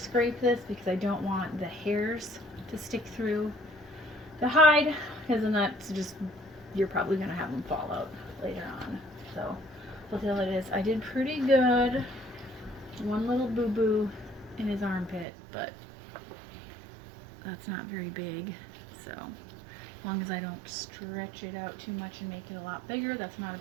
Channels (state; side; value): drops out; left; at 15.2 s